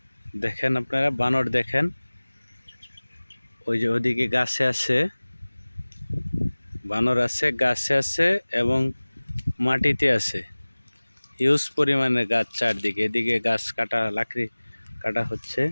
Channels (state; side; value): inverted; both; correlation -1.00